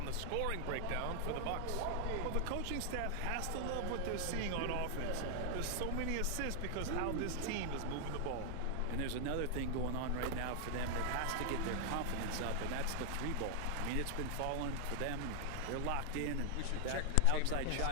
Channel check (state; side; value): different; both; correlation 0.00